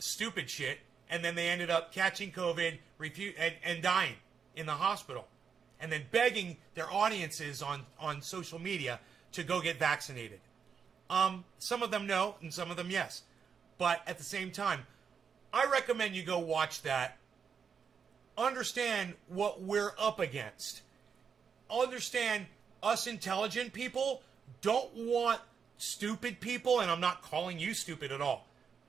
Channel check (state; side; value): quieter; left; 6.6 dB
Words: shit. And then they ended up catching COVID and dying in the hospital. And then begging their audiences on social media to go get vaccinated. Some of them no, and some of them yes. But at the same time, I recommend you go watch that. Understand what we're up against. Understand us intelligent people don't want stupid people, and I'm not calling you stupid at all.